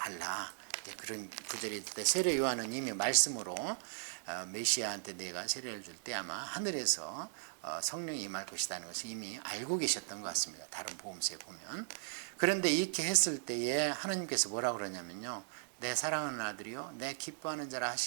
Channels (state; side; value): silent; left; digital silence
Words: 그런 구절이 있을 때 세례 요한은 이미 말씀으로 메시아한테 내가 세례를 줄 때 아마 하늘에서 성령이 임할 것이라는 것을 이미 알고 계셨던 것 같습니다. 다른 복음서에 보면. 그런데 이렇게 했을 때에 하나님께서 뭐라 그러냐면요, 내 사랑하는 아들이요 내 기뻐하는 자라